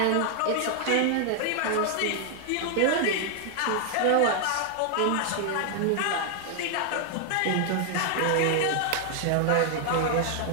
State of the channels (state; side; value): different; both; correlation 0.00